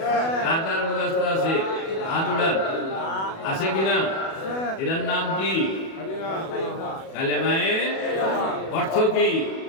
কার কার মুখস্থ আছে? আতুডান। আছে কিনা? এটার নাম কি? কালেমায়ে। অর্থ কি?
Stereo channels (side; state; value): right; late; 37 ms